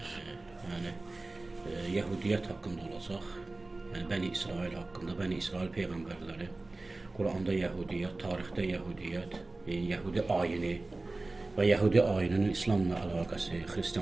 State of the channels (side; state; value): left; quieter; 3.1 dB